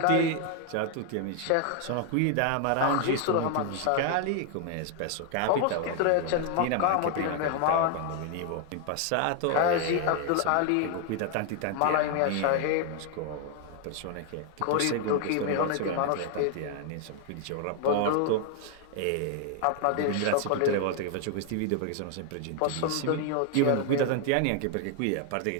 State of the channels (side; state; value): both; different; correlation 0.00